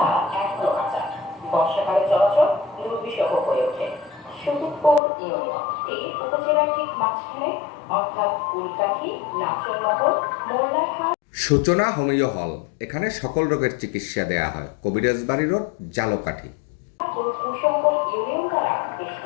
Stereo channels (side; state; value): right; drops out; at 5.0 s